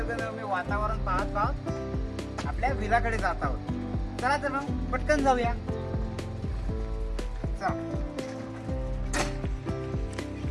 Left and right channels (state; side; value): identical; both; correlation 1.00